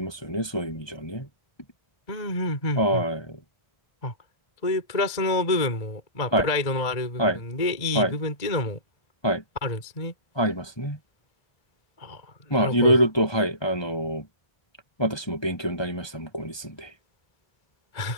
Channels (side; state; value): right; late; 1.2 ms